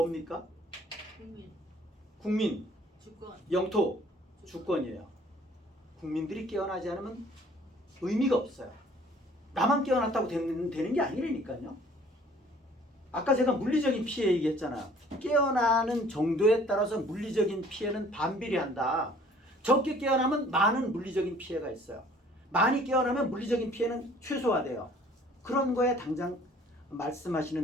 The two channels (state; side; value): normal; both; correlation 0.55